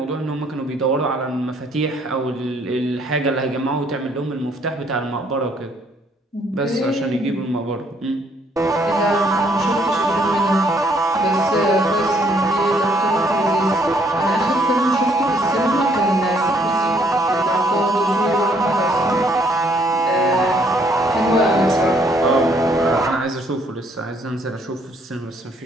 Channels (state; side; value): normal; both; correlation 0.66